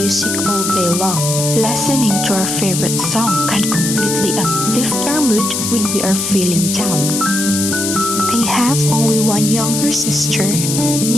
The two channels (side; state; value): left; noise; hiss, 2 dB below the sound